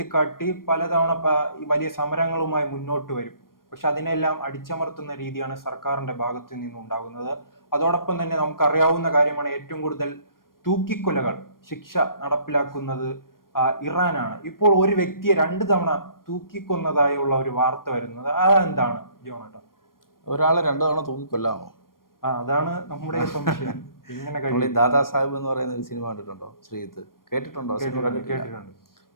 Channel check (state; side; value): late; right; 0.91 ms